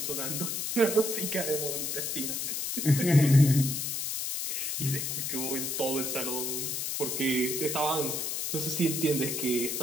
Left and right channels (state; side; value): noise; left; hiss, 2 dB below the sound